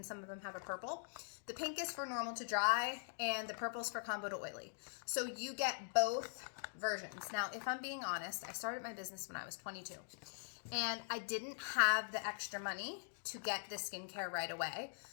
some of them have a purple? The pink is for normal to dry and the purple is for combo to oily. So you get both versions. Now, if I'm being honest, I started my business when I was 22 and I didn't have the extra money to get the skincare right away.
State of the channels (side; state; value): right; silent; digital silence